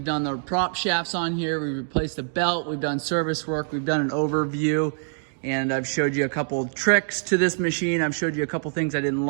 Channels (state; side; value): silent; left; digital silence